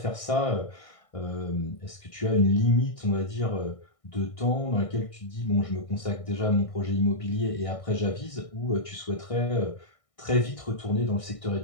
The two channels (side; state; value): right; late; 1.6 ms